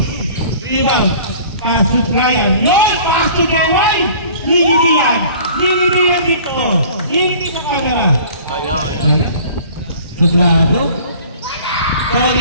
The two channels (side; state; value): both; inverted; correlation -0.48